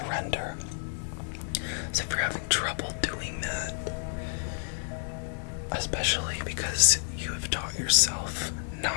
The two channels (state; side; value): silent; right; digital silence